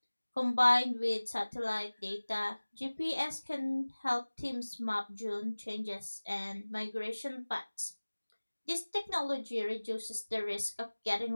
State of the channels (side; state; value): both; inverted; correlation -1.00